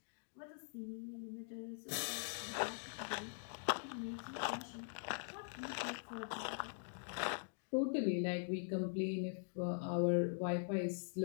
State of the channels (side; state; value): right; silent; digital silence